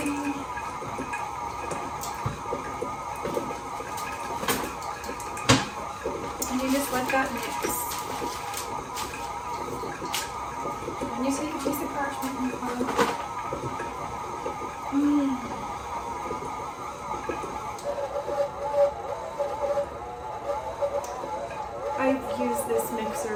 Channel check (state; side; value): identical; both; correlation 1.00